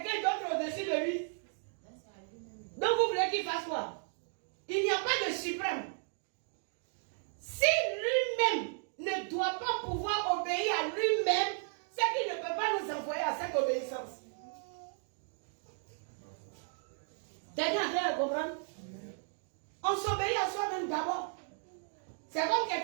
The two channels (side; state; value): left; silent; 55 dB below the other